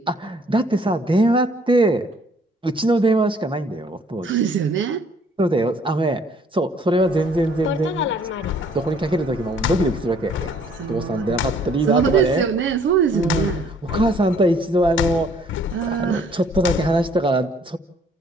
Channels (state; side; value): normal; both; correlation 0.60